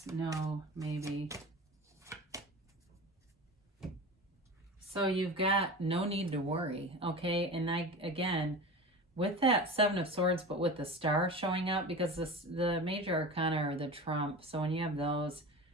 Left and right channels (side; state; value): both; normal; correlation 0.31